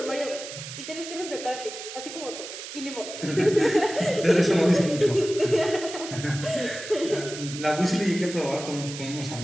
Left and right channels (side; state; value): right; noise; hiss, 10 dB below the sound